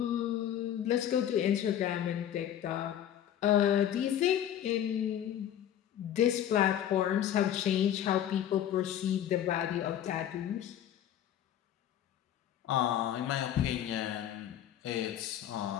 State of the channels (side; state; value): right; quieter; 10.7 dB